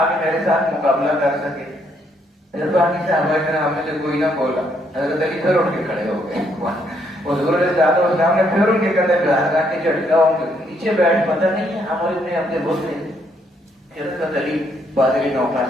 میرے ساتھ مقابلہ کر سکے۔ پھر باقی صحابہ کرام میں سے کوئی نہ بولا۔ حضرت علی پھر اٹھ کے کھڑے ہو گئے، حضور علیہ السلام نے پھر ان کے کندھے پہ ہاتھ رکھ کے جھٹکا، ان کے نیچے بیٹھ، پتہ نہیں ہے عمر ابن عبد الود ہے۔ پھر حضرت علی بادری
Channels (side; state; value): both; normal; correlation 0.72